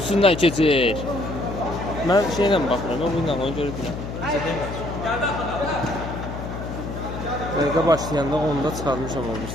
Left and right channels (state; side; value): noise; left; hum, 7 dB below the sound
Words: keçir. Mən şeylə baxıram, mən bununla onu görürəm. Dəqiqə başlayanda onda çıxarmışam